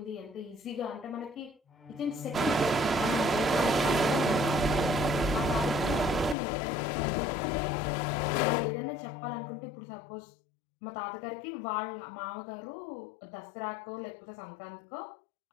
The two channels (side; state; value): right; drops out; at 6.4 s